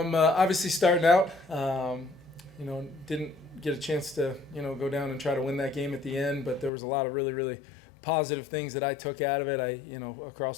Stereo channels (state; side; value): drops out; right; at 6.7 s